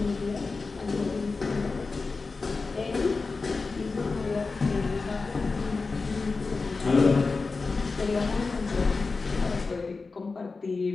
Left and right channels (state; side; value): quieter; right; 4.1 dB